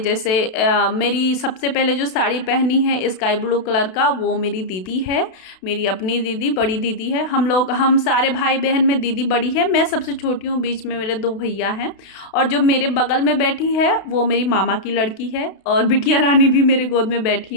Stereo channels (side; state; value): right; late; 32 ms